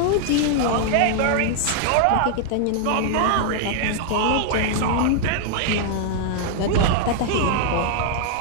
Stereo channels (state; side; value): different; both; correlation -0.01